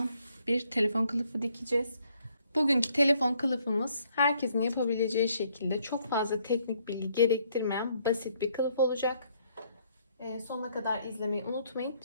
bir telefon kılıfı dikeceğiz. Bugünkü telefon kılıfımız herkesin yapabileceği şekilde çok fazla teknik bilgi gerektirmeyen basit bir kılıf olacak. Sonuna kadar izlemeyi unutmayın.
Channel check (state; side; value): inverted; both; correlation -0.69